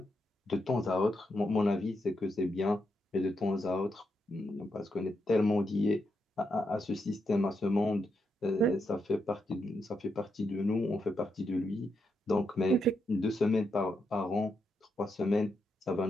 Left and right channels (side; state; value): both; normal; correlation 0.82